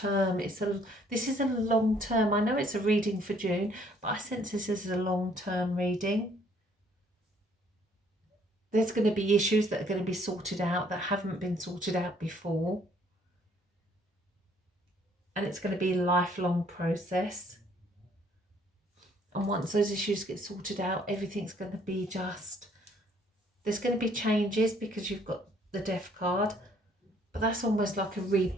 This is a long term. I know it's a reading for June, but I sense this is a long term reading. There's going to be issues that are going to be sorted out that haven't been sorted out before. And it's going to be a lifelong process. And once those issues get sorted out, everything's going to be just... There's going to be changes because you've got the Death card. But that's almost like a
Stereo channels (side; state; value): both; normal; correlation 0.63